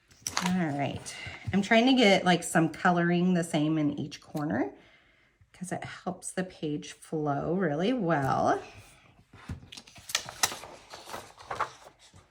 All right, I'm trying to get like some coloring the same in each corner because it helps the page flow really well.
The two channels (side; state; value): both; identical; correlation 1.00